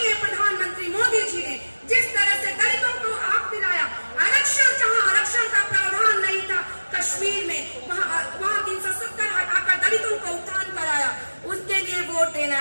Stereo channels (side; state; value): both; inverted; correlation -1.00